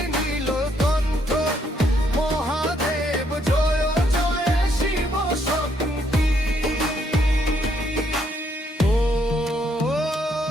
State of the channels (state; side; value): normal; both; correlation 0.72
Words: নীলকণ্ঠ মহাদেব জয় জয় শিব শক্তি। ও